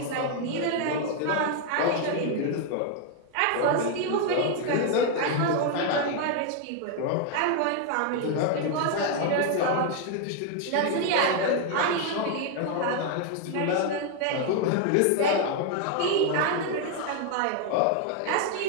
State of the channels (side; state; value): both; different; correlation 0.01